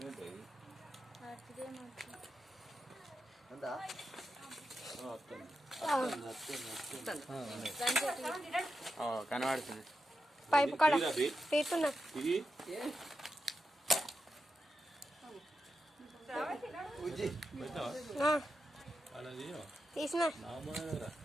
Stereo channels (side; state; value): both; normal; correlation 0.88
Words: ఉందా కనబడుతుంది పైపు కాడ తీస్తున్నా తీసిన